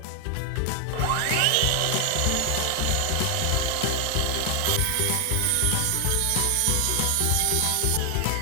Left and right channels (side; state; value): both; different; correlation 0.00